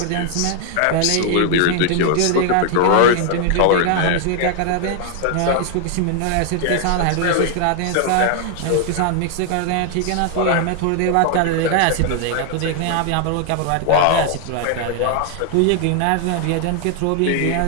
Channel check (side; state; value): both; different; correlation 0.00